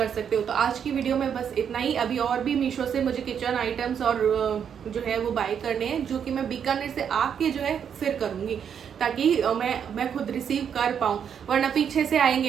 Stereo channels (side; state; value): left; quieter; 7.9 dB